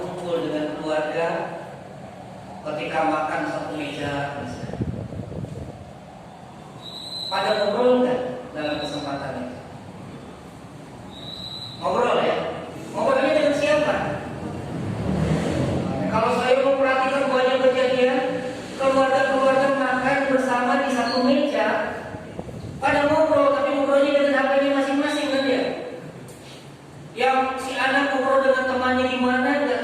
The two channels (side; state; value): both; identical; correlation 1.00